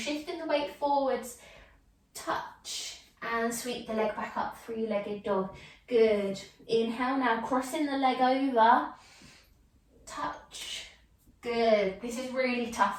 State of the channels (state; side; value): identical; both; correlation 1.00